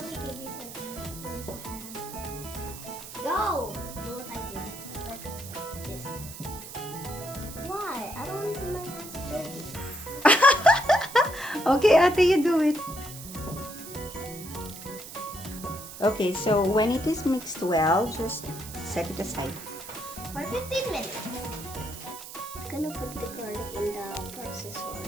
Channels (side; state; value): right; noise; hiss, 13 dB below the sound